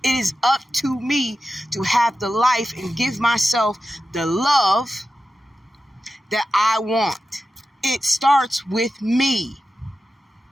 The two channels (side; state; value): both; normal; correlation 0.92